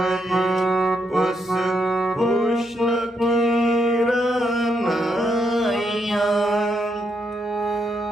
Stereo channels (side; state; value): both; normal; correlation 0.79